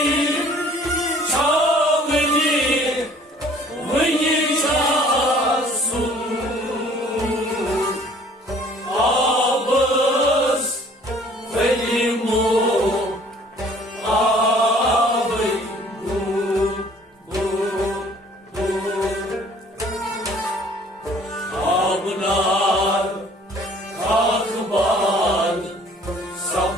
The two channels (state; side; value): normal; both; correlation 0.55